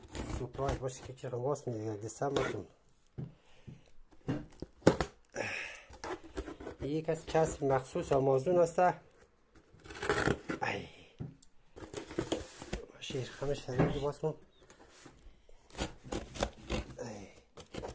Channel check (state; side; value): identical; both; correlation 1.00